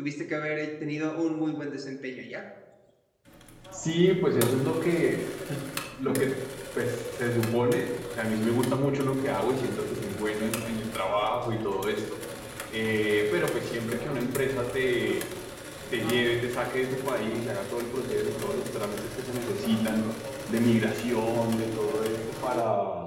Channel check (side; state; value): both; identical; correlation 1.00